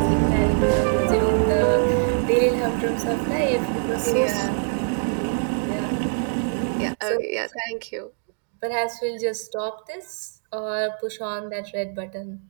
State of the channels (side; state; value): left; silent; digital silence